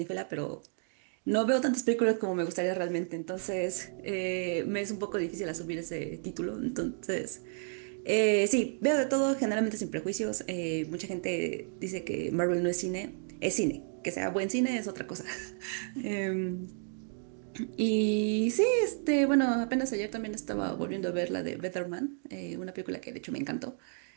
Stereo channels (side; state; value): left; silent; 56 dB below the other